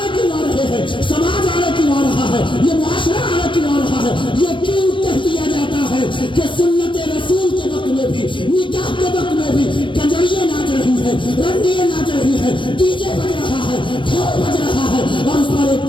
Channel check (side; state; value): right; late; 0.24 ms